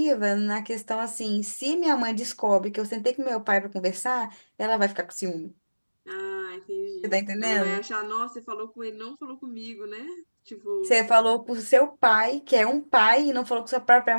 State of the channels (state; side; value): inverted; both; correlation -1.00